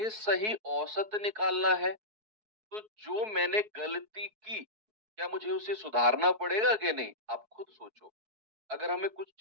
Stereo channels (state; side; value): late; left; 4.6 ms